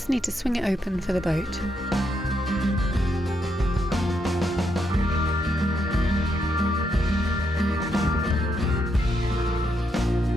need to swing it open for the boat.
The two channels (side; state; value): both; normal; correlation 0.79